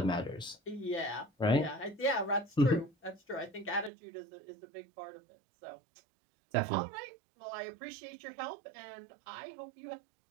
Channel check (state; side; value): drops out; left; at 3.9 s